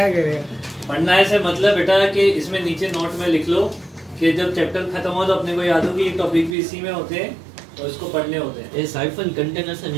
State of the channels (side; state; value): left; drops out; at 6.6 s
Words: करेगा? पढ़ना है से मतलब बेटा कि इसमें नीचे नोट में लिख लो कि जब चैप्टर खत्म हो तो अपने को याद हो कि ये टॉपिक भी इसी में होते हैं और इसको पढ़ने होते हैं। ये साइफन कंटेनर से